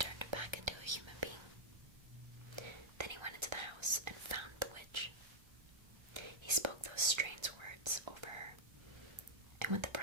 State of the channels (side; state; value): left; late; 1.3 ms